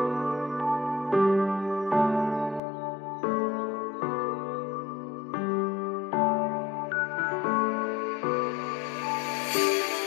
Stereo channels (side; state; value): right; drops out; at 2.6 s